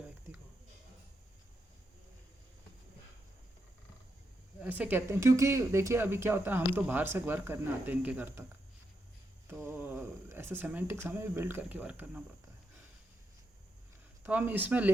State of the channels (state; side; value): normal; both; correlation 0.83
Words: व्यक्ति को. ऐसे कहते हैं क्योंकि देखिए अभी क्या होता है, हम तो बाहर से वर्क करने आते हैं इनके घर तक, तो ऐसे सेमेंटिक्स हमें भी बिल्ड करके वर्क करना पड़ता है. तो हम इसमें